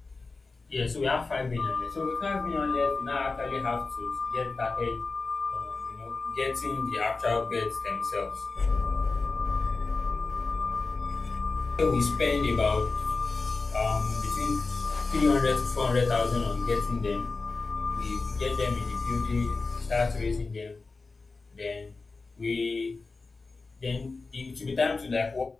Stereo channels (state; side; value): quieter; right; 3.9 dB